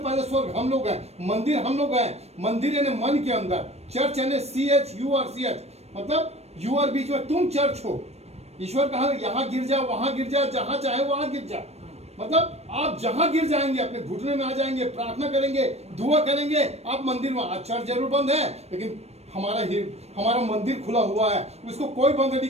स्वर्ग हम लोग हैं, मंदिर हम लोग हैं। मंदिर यानी मन के अंदर, चर्च यानी CHURCH, मतलब यू आर, बीच में तुम चर्च हो। ईश्वर कहा, यहाँ गिर जा, वहां गिर जा, जहां चाहे वहां गिर जा, मतलब आप जहां गिर जाएंगे, अपने घुटने में आ जाएंगे, प्रार्थना करेंगे, दुआ करेंगे, आप मंदिर में। आज चर्च जरूर बंद है, लेकिन हमारा मंदिर खुला हुआ है, उसको कोई बंद नहीं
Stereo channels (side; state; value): left; late; 0.31 ms